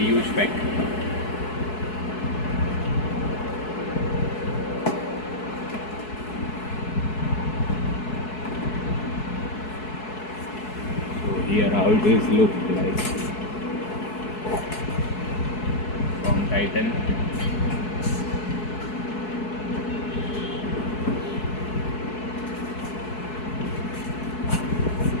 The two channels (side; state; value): right; late; 4.7 ms